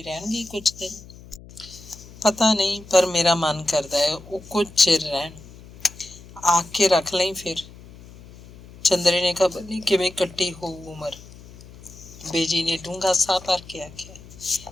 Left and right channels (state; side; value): noise; left; hum, 19 dB below the sound